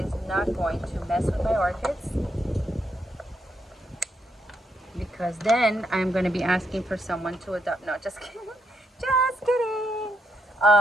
not going to mess with my orchids, because then I'm going to be asking for someone to adopt. No, just kidding. Just kidding.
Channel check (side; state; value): both; normal; correlation 0.78